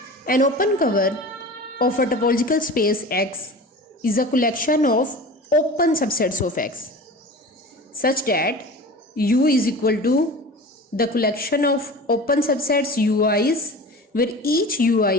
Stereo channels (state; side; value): normal; both; correlation 0.36